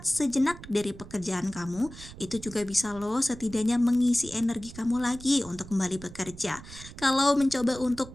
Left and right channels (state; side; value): noise; right; rumble, 16 dB below the sound